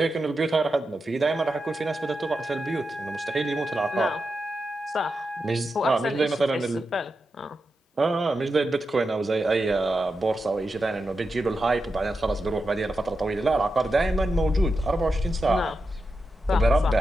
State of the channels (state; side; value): normal; both; correlation 0.89